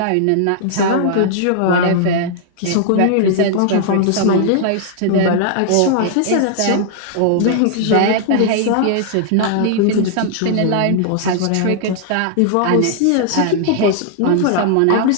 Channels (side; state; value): both; different; correlation -0.01